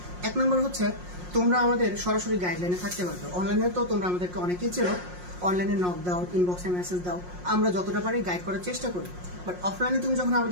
এক নম্বর হচ্ছে তোমরা আমাদের সরাসরি গাইডলাইনে থাকতে পারবে। অনলাইনে তো তোমরা আমাদেরকে অনেকেই চেনো, অনলাইনে নক দাও, ইনবক্সে মেসেজ দাও, আমরা যতটা পারি গাইড করার চেষ্টা করি। বাট অফলাইনে তুমি যখন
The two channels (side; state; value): left; late; 5.6 ms